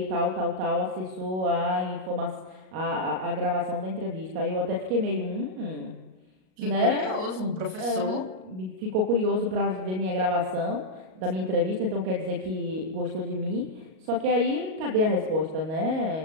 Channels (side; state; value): left; late; 38 ms